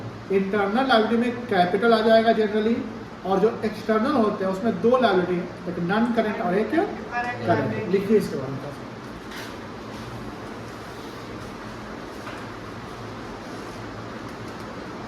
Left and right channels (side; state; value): both; identical; correlation 1.00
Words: इंटरनल लायबिलिटी में कैपिटल आ जाएगा जनरली, और जो एक्सटर्नल होते हैं उसमें 2 लायबिलिटी, एक नॉन करेंट और एक करेंट। लिखिए इसके बारे में।